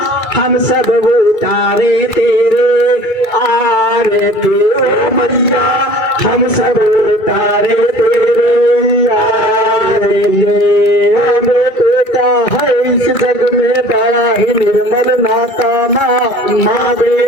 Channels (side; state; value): right; late; 2.3 ms